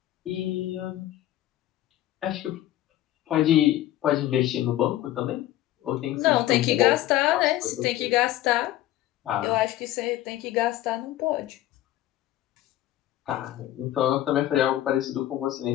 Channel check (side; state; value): right; quieter; 14.1 dB